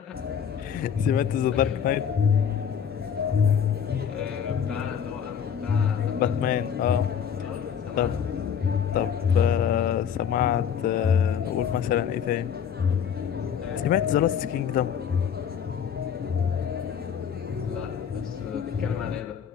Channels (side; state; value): right; quieter; 7.9 dB